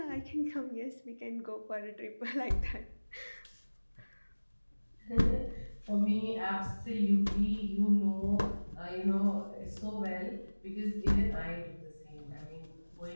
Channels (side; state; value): both; inverted; correlation -1.00